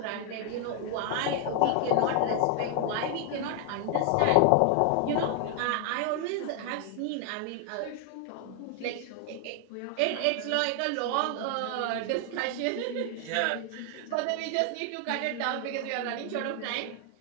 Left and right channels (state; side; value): different; both; correlation 0.00